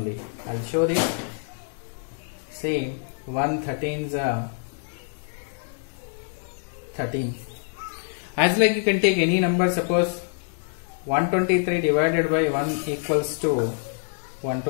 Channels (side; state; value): right; silent; digital silence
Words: I'll show this. See, 1 13 is 13. As like you can take any number, suppose 123 divided by 1 equals to